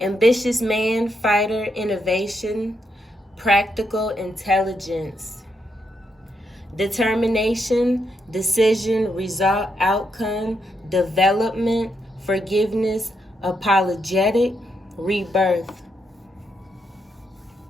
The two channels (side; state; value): both; normal; correlation 0.80